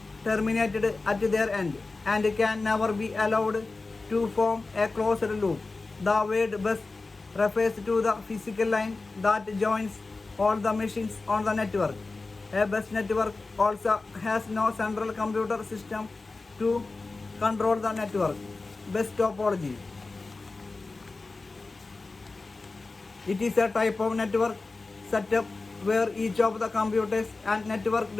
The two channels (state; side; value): quieter; right; 3.6 dB